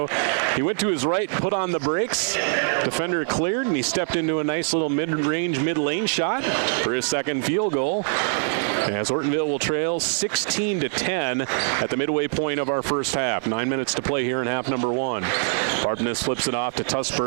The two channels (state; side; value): silent; left; 58 dB below the other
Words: He went to his right, put on the brakes. Defender cleared, and he stepped into a nice little mid-range, mid-lane shot for his 2nd field goal. As Ortonville will trail 16-10 at the midway point of our first half. 9 minutes to play here in half number 1. Varpness flips it off to